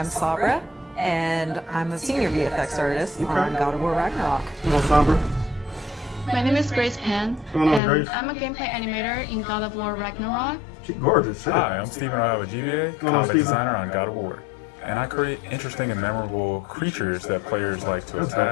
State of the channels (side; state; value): right; drops out; at 7.8 s